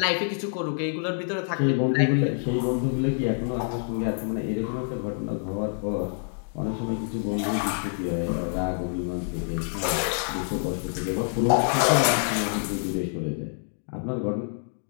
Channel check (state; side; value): silent; right; digital silence